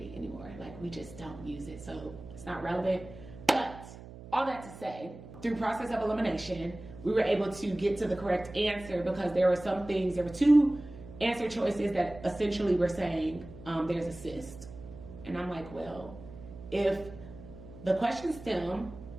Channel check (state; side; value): noise; right; hum, 16 dB below the sound